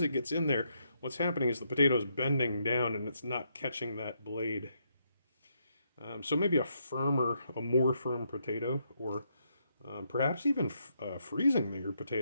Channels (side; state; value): both; inverted; correlation -0.77